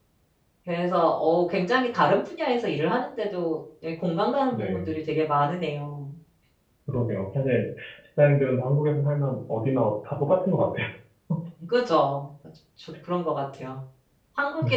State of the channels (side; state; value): both; identical; correlation 1.00